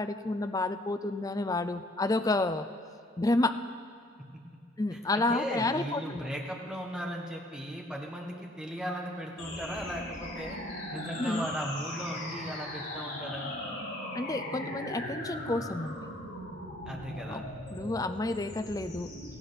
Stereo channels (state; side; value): normal; both; correlation 0.61